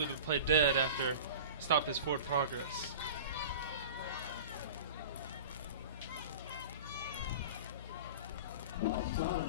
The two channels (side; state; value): both; inverted; correlation -0.35